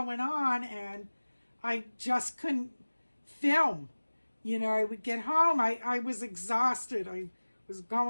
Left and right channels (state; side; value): inverted; both; correlation -1.00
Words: on and I just couldn't film. I would get home. I was exhausted. I was